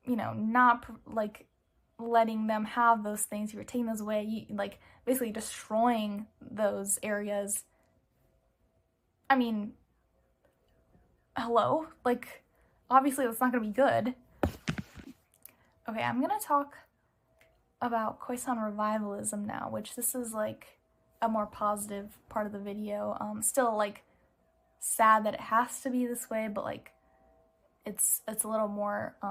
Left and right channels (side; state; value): both; identical; correlation 1.00